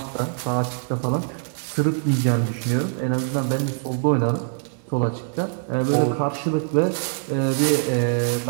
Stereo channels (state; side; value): silent; left; digital silence